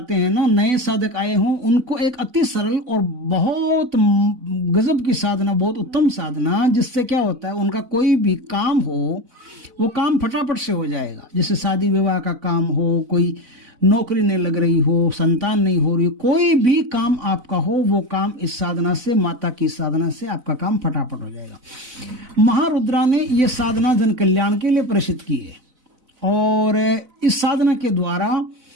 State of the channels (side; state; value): left; late; 4.0 ms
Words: हैं ना, नए साधक आए हों, उनको एक अति सरल और बहुत गजब की साधना, बहुत उत्तम साधना, जिससे क्या होता है, उनका कोई भी काम हो वो काम फटाफट से हो जाएगा। जैसे शादी विवाह का काम हो, कोई नौकरी नहीं लग रही हो, संतान नहीं हो रही, कोई भी काम आपका हो, वो काम इस साधना से, माता की साधना से आपका काम फटाफट हो जाएगा। महारुद्रा ने ये साधना जन कल्याण के लिए प्रसिद्ध की है और इस साधना के द्वारा